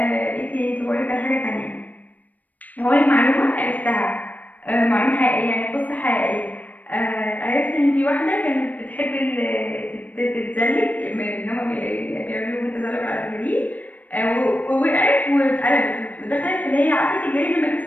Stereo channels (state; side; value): late; right; 0.078 ms